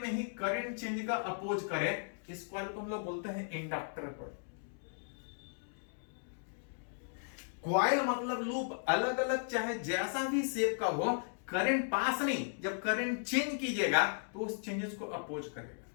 ही करंट चेंज का अपोज करे, इस कॉइल को हम लोग बोलते हैं इंडक्टर कॉइल। कॉइल मतलब लूप अलग अलग चाहे जैसा भी शेप का हो, करंट पास नहीं, जब करंट चेंज कीजिएगा तो उस चेंजेस को अपोज करेगा।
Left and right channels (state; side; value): silent; right; digital silence